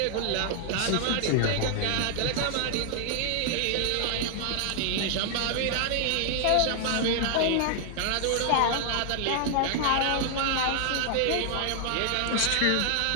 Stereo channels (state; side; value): different; both; correlation 0.00